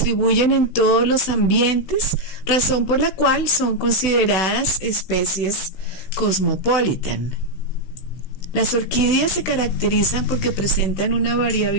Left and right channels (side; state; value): right; late; 16 ms